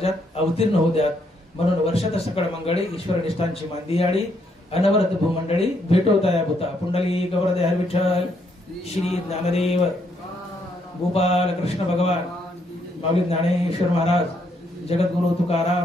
अवतीर्ण होऊ द्यात. म्हणून वर्षात सकळ मंगळी ईश्वर निष्ठांची मांदी आडी अनवरत भूमंडळी भेटवता या भूता. पुंडली गौरदे हर विठ्ठल श्री ज्ञानदेव गोपाल कृष्ण भगवान माऊली ज्ञानेश्वर महाराज जगद्गुरु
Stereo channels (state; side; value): normal; both; correlation 0.73